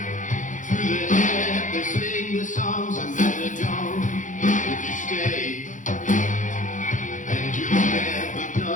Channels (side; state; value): right; late; 0.37 ms